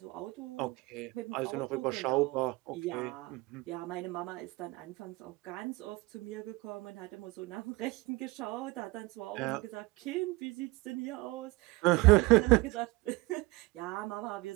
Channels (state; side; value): quieter; left; 23.0 dB